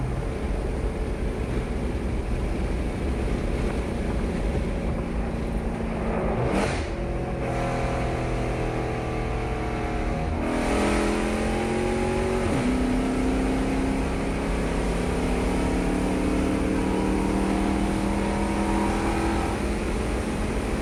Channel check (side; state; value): both; identical; correlation 1.00